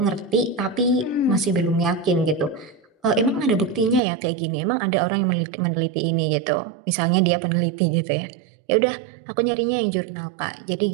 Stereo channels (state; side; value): drops out; left; at 4.0 s